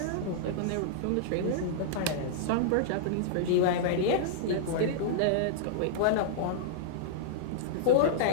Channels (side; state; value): both; different; correlation -0.02